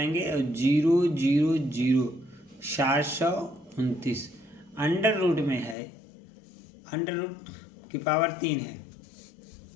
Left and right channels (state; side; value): drops out; right; at 5.8 s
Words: और 000 729 अंडर रूट में है, अंडर रूट की पावर 3 है